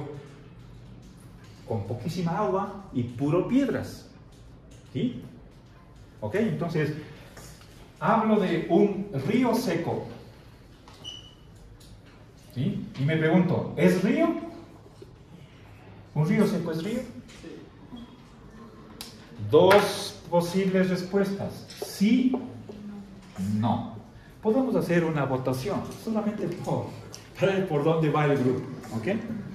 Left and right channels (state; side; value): identical; both; correlation 1.00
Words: con poquísima agua y puro piedras. ¿Sí? Ok, entonces hablo de un río seco. ¿Sí? Y me pregunto, ¿es río? ¿Un río seco es río? Dos posibles respuestas: sí, no. Podemos hacer una votación, solamente para ver por dónde va el grupo. ¿Ok?